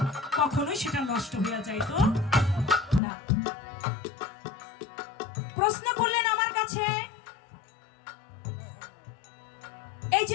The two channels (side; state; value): right; drops out; at 3.0 s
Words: কখনোই সেটা নষ্ট হয়ে যাইতো না। প্রশ্ন করলেন আমার কাছে, এই